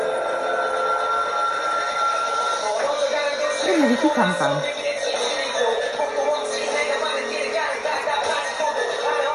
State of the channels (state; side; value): identical; both; correlation 1.00